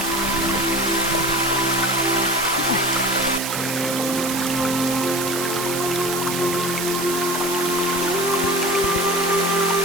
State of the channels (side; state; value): right; noise; hiss, 4 dB below the sound